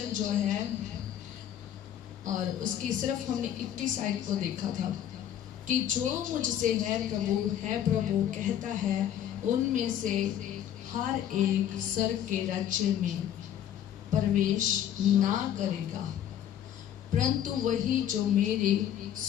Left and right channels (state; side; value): quieter; right; 10.4 dB